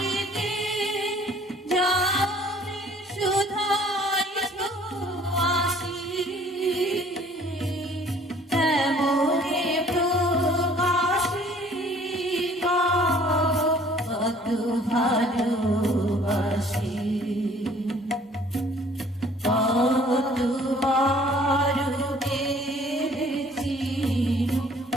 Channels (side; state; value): both; normal; correlation 0.55